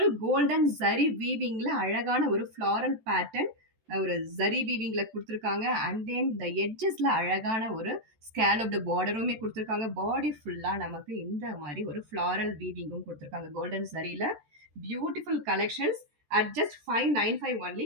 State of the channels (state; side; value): late; left; 14 ms